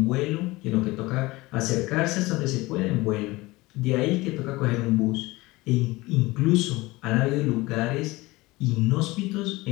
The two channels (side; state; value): right; quieter; 21.0 dB